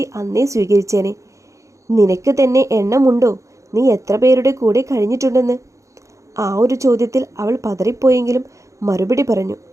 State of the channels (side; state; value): left; late; 0.15 ms